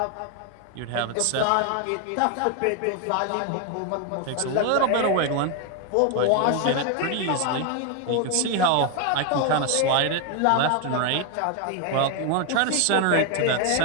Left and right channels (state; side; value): different; both; correlation 0.01